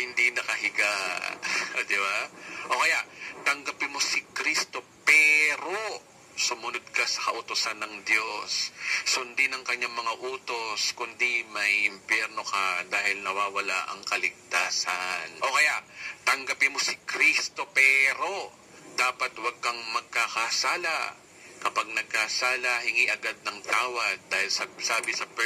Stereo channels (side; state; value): both; identical; correlation 1.00